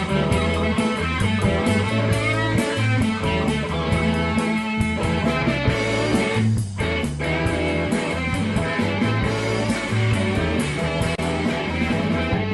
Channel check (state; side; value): identical; both; correlation 1.00